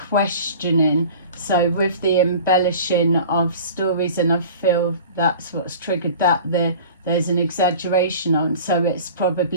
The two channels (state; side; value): inverted; both; correlation -0.41